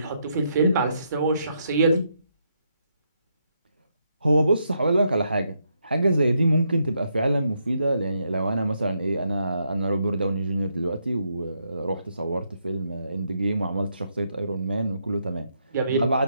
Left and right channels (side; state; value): both; inverted; correlation -0.78